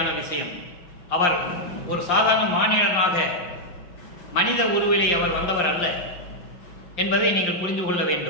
விஷயம். அவர் ஒரு சாதாரண மானிடனாக மனித உருவிலே அவர் வந்தவர் அல்ல என்பதை நீங்கள் புரிந்து கொள்ள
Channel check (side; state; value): right; late; 5.7 ms